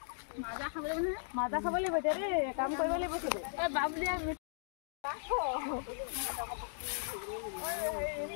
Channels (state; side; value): silent; right; digital silence